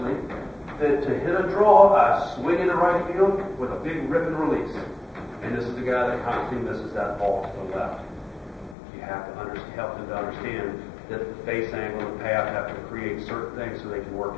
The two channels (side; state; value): right; drops out; at 8.8 s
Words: that to hit a draw, I swing into right field with a big rip and release. And this is the guy that constantly misses that ball to the left. You have to help them to understand that the face angle and the path have to create certain things so they can